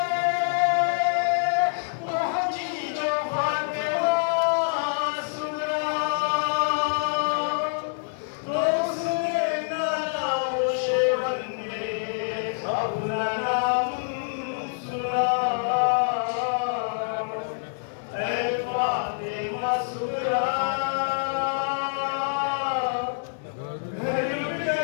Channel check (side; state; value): right; silent; digital silence